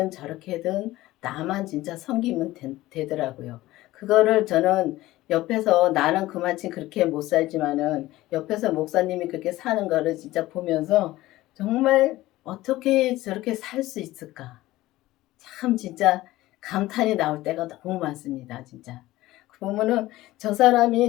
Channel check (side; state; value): right; quieter; 17.1 dB